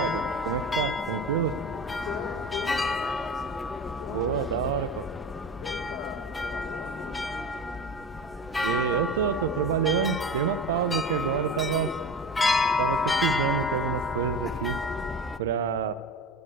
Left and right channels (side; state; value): both; normal; correlation 0.31